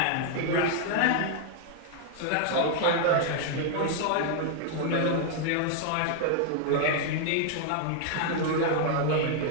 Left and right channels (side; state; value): both; different; correlation 0.00